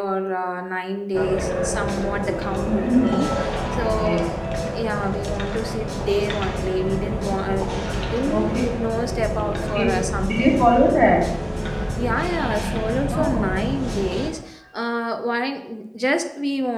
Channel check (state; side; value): identical; both; correlation 1.00